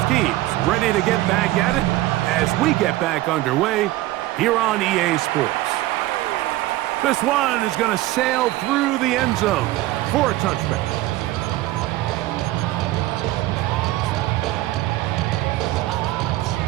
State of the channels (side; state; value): left; quieter; 17.0 dB